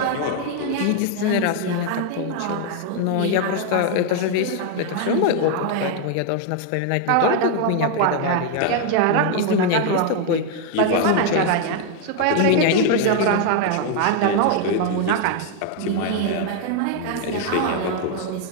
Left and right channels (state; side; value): different; both; correlation 0.00